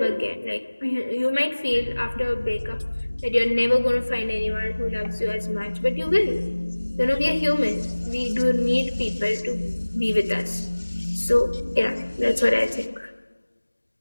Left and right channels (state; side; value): inverted; both; correlation -1.00